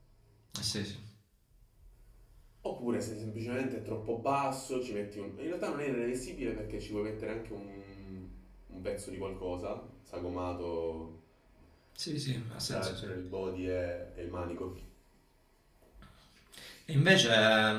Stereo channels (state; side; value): identical; both; correlation 1.00